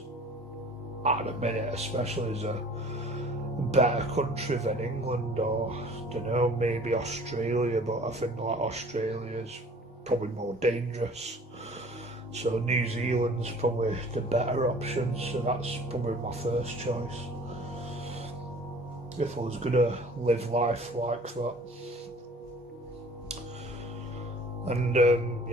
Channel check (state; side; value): normal; both; correlation 0.49